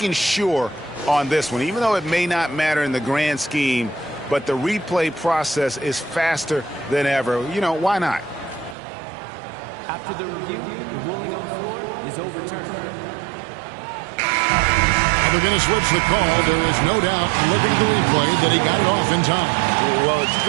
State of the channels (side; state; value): left; drops out; at 8.8 s